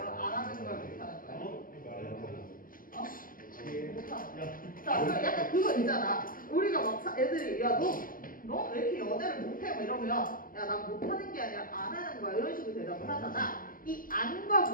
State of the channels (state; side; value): late; right; 0.41 ms